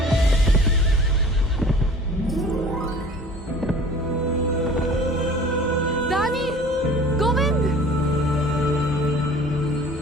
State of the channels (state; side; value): normal; both; correlation 0.46